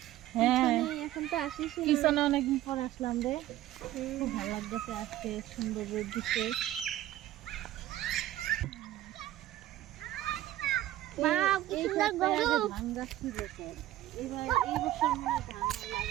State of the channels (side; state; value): left; quieter; 14.3 dB